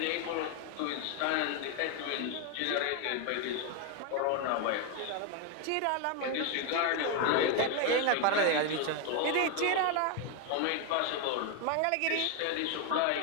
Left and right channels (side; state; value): both; different; correlation 0.01